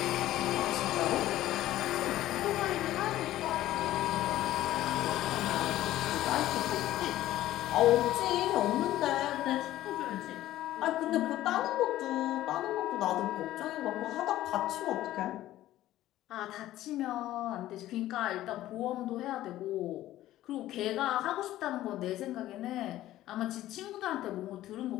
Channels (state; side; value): quieter; right; 14.5 dB